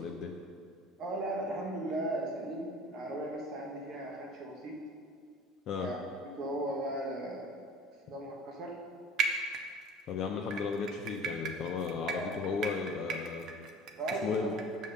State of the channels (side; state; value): both; normal; correlation 0.44